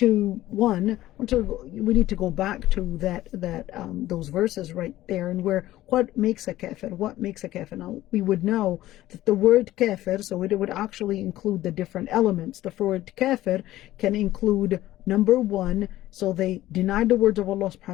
we need to go back to those verses right there, and where what makes a kafir? Now we would know that the word kafir, so it would actually include the different elements. The word kafir can include, number one, so they denied the words of Allah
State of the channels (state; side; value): quieter; right; 15.2 dB